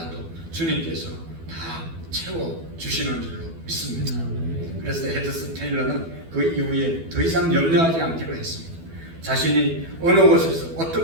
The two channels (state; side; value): late; left; 12 ms